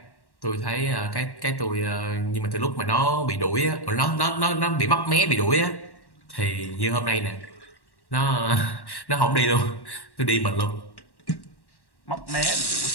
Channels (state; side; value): late; right; 1.1 ms